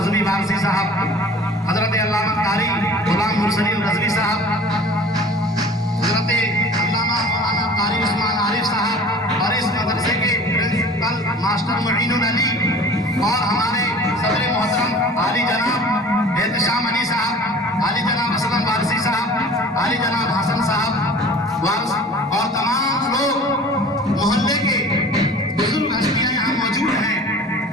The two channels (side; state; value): both; normal; correlation 0.44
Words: वारसी साहब, हजरत अल्लामा कारी गुलाम मुरसलीन रज़वी साहब, हजरत अल्लामा मौलाना कारी उस्मान आरिफ साहब और इस मदरसे के प्रिंसिपल मास्टर मुईनुल अली और हमारे सदर मोहतरम आली जनाब एहतशाम अली साहब, आली जनाब असलम वारसी साहब, आली जनाब हसन साहब वारस और तमाम लोग मोहल्ले के बुजुर्ग हस्तियां यहाँ मौजूद हैं।